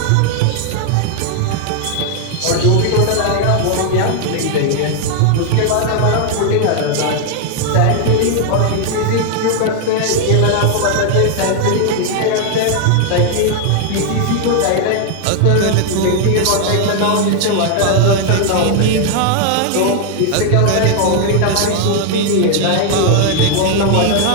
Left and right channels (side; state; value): both; different; correlation 0.00